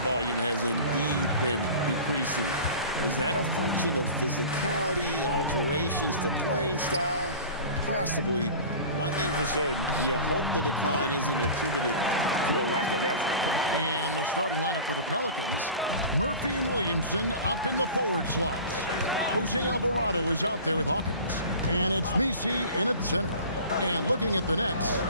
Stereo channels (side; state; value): both; inverted; correlation -0.38